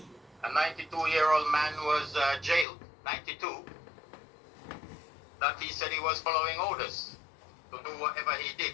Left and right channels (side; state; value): right; drops out; at 2.7 s